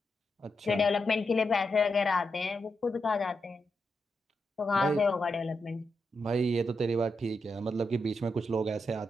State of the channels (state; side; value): normal; both; correlation 0.85